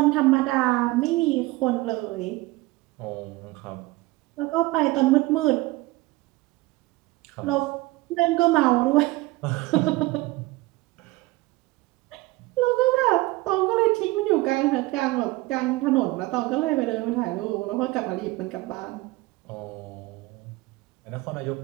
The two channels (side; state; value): left; quieter; 20.5 dB